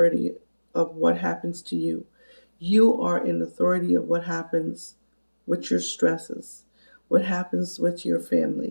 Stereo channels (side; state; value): both; inverted; correlation -1.00